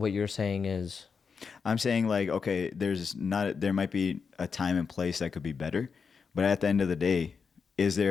you're saying is, I'm saying like, okay, there might be a time and place that could be better, but at the end of the day, is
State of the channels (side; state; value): right; quieter; 5.7 dB